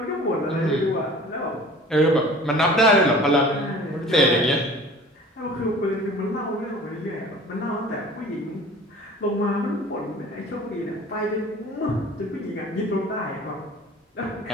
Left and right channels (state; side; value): normal; both; correlation 0.45